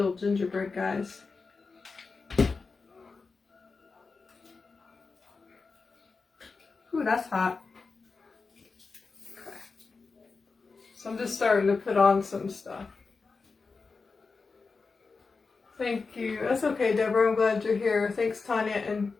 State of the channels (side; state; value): right; quieter; 4.4 dB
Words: gingerbread guys. Ooh, that's hot. Okay. So I'm just starting to put on some stuff. Thank you. That's okay, Deborah. I'm glad you're here. Thanks, Tanya. And